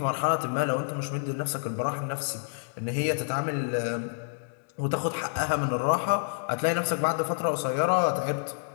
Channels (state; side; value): silent; right; digital silence